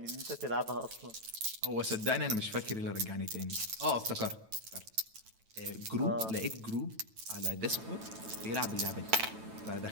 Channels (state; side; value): late; left; 9.1 ms